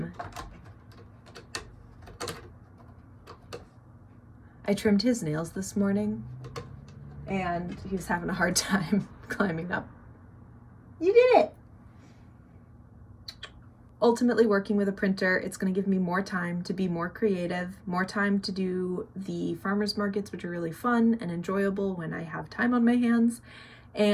I trimmed his nails this morning and he was having a hard time climbing up. You did it! Ultimately, working with a printer, it's going to give me more time to be more creative, more time to do the farmers markets, which are really fun and enjoyable when I have time on my hands,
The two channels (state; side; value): identical; both; correlation 1.00